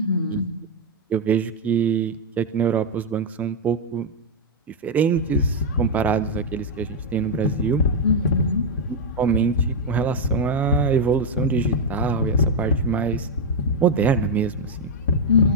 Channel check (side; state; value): both; normal; correlation 0.01